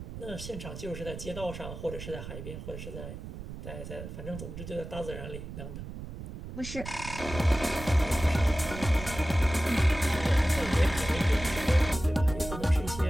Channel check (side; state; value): right; noise; rumble, 10 dB below the sound